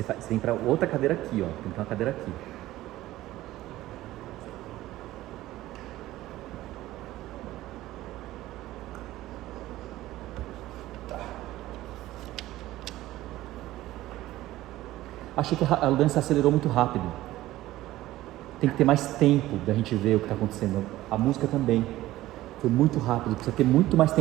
tem pra outra cadeira aqui, ó. Tem que ter uma cadeira aqui. achei que a dança acelerou muito rápido. Tem que ter mais tempo da gente ver o que está acontecendo. A música também. Foi muito rápido, precisa ter muito mais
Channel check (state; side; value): quieter; left; 15.9 dB